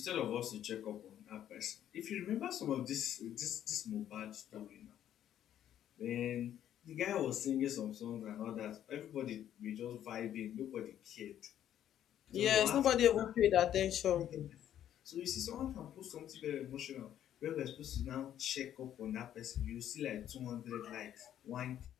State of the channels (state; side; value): quieter; right; 10.8 dB